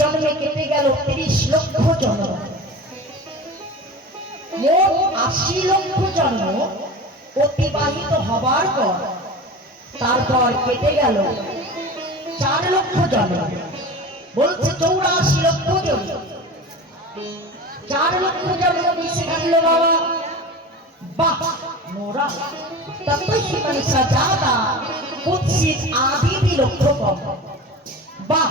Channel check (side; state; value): both; normal; correlation 0.33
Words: কেটে গেল 30 লক্ষ জন্ম। মোট 80 লক্ষ জন্ম অতিবাহিত হবার পর তারপর কেটে গেল 4 লক্ষ জন্ম। বলছে 84 লক্ষ জন্ম। 4 লক্ষ জন্ম মিশে গেল বাবা। বাহ মোরা ততহি মনুষ্যজাতা কুৎসিত আদি বিলক্ষকম। বাহ